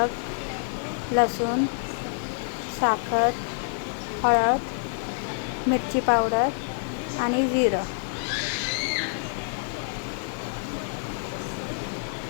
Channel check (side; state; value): right; silent; 60 dB below the other